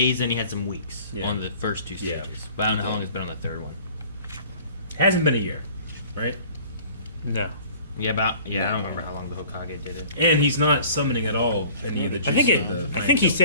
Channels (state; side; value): inverted; both; correlation -0.49